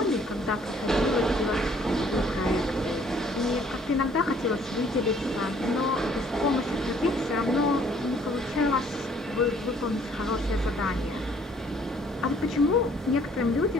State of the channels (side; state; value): both; normal; correlation 0.60